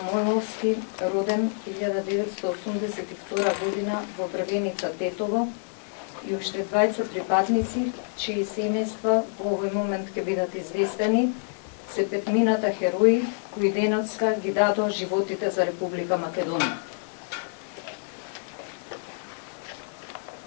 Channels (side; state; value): right; silent; 60 dB below the other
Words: роден 1982 година во Брвеница, Тетово, и уште двајца припадници, чии семејства во овој момент ќе бидат известени, се петмината херои кои денеска ги дадоа животите за Република Македонија.